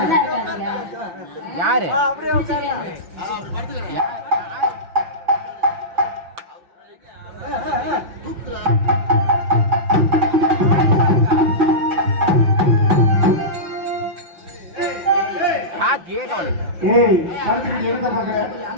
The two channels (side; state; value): left; late; 5.7 ms